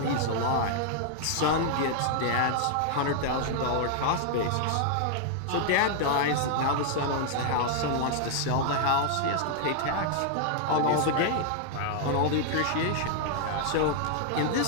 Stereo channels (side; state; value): both; different; correlation 0.00